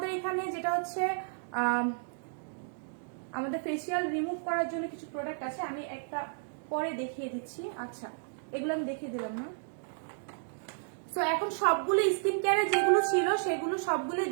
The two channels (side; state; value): left; silent; digital silence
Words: এখানে যেটা হচ্ছে আমাদের ফেসিয়াল রিমুভ করার জন্য কিছু প্রোডাক্ট আছে, আমি একটা পরে দেখিয়ে দিচ্ছি। আচ্ছা, এগুলো আমি দেখিয়ে দিলাম না। সো এখন সবগুলো স্কিন কেয়ারে যেগুলো ছিল সেগুলো সবগুলো